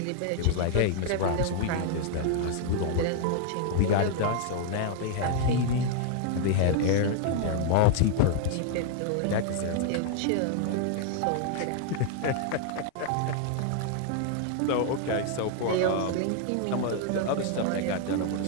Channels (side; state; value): both; different; correlation 0.00